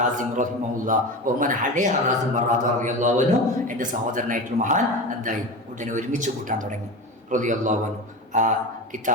റഹിമഹുല്ലാ അലി ഹറാസിം റളിയല്ലാഹു അൻഹു എൻ്റെ സഹോദരനായിട്ടുള്ള മഹാൻ എന്തായി ഉടനെ ഒരുമിച്ച് കൂട്ടാൻ തുടങ്ങി റളിയല്ലാഹു അൻഹു. ആ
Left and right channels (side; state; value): both; normal; correlation 0.27